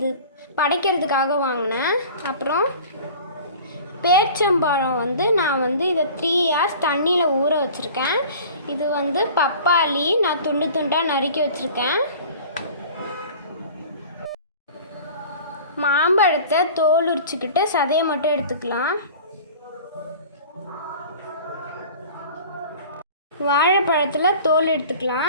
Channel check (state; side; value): inverted; both; correlation -0.42